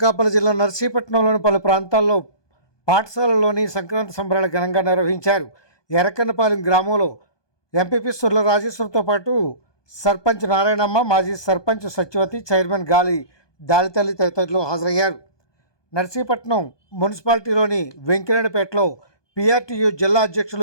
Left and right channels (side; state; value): right; late; 1.2 ms